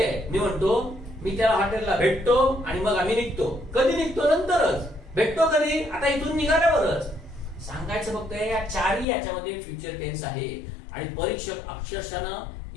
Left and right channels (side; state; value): right; drops out; at 9.1 s